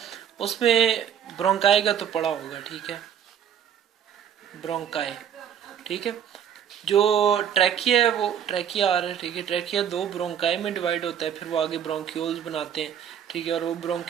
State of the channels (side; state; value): left; quieter; 9.0 dB